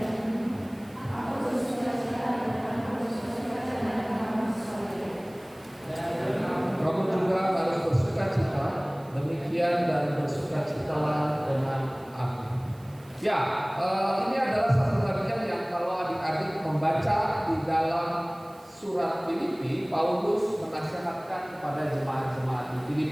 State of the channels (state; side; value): noise; right; hiss, 27 dB below the sound